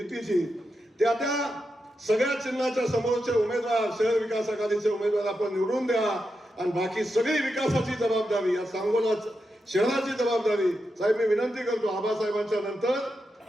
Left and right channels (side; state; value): both; normal; correlation 0.87